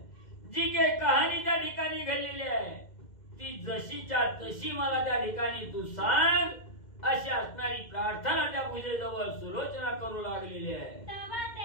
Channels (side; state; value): right; late; 2.1 ms